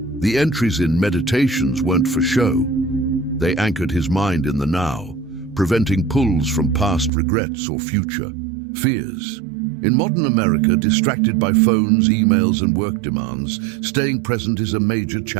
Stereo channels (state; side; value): drops out; left; at 7.1 s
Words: The entries in Meditations weren't for show. They anchored his mind in the now, preventing pulls from past regrets or future fears. In modern America, distracted by phones, emails, and work demands, staying present is a major